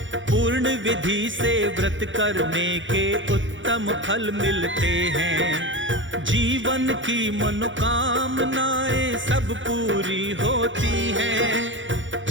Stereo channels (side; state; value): left; late; 0.56 ms